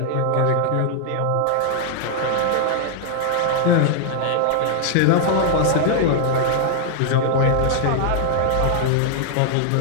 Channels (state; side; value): different; both; correlation 0.00